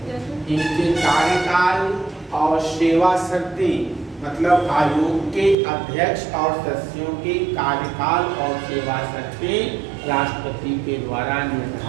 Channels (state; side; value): drops out; left; at 5.6 s